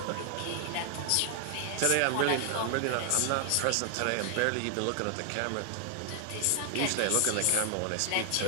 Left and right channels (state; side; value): different; both; correlation 0.00